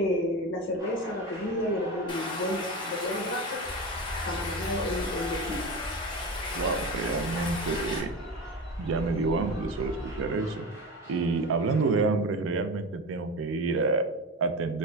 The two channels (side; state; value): both; normal; correlation 0.25